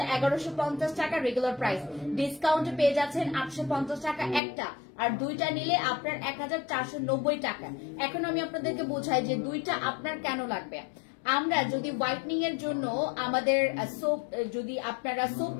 1150 টাকা রেগুলার প্রাইস, ডিসকাউন্টে পেয়ে যাচ্ছেন 850 টাকা একটা, আর 2টা নিলে আপনার 1490 টাকা। এখন আমি আপনাদেরকে বোঝাই যে 2টা আপনার কেন লাগবে। আমরা যদি হোয়াইটনিং এর জন্য আমাদের সোপ, যদি আপনারা সোপ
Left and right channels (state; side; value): drops out; right; at 4.4 s